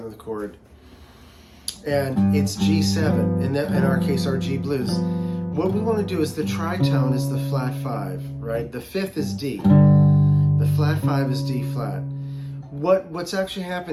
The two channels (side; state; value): both; identical; correlation 1.00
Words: chord, and it's G7, in our case, our G blues, what we want to do is the tritone is the flat 5, right? The fifth is D. The flat 5 is D flat. What's actually